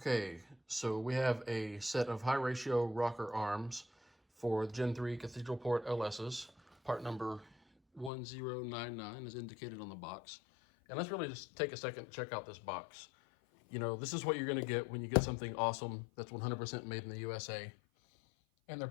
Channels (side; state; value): right; drops out; at 8.1 s